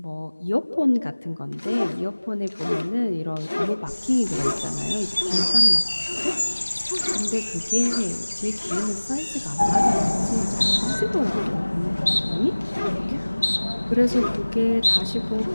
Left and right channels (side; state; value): both; inverted; correlation -1.00